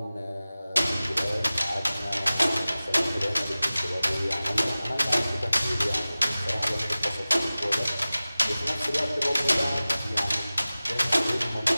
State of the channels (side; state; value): both; inverted; correlation -0.97